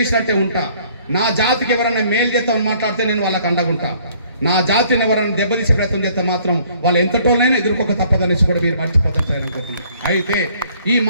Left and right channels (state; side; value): inverted; both; correlation -0.60